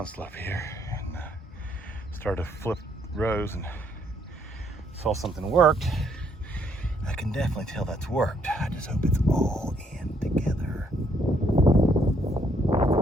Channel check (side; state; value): both; normal; correlation 0.70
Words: here, and started to flip rows and saw something worked. I can definitely tell that's worked. I just hope it's all in together.